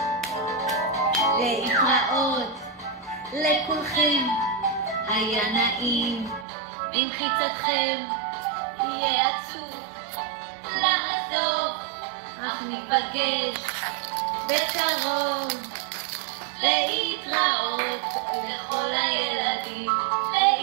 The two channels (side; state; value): left; drops out; at 6.5 s